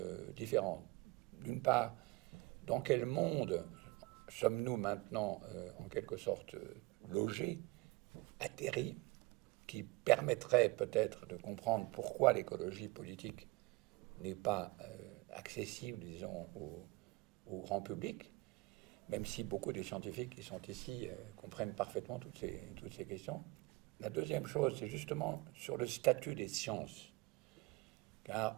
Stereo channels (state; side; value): quieter; left; 22.5 dB